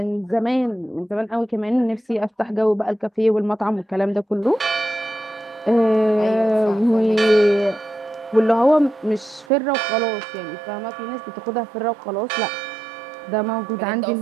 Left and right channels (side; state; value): left; drops out; at 9.5 s